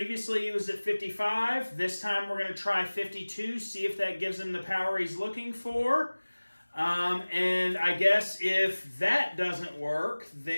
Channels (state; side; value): inverted; both; correlation -1.00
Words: he was at 55. This time, we're going to try 52, see if that gives him the power he's looking for. And I guess if that doesn't work,